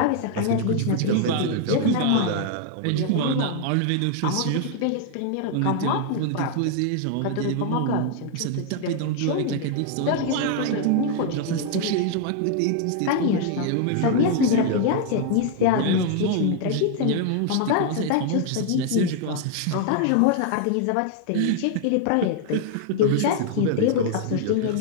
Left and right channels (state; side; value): different; both; correlation 0.00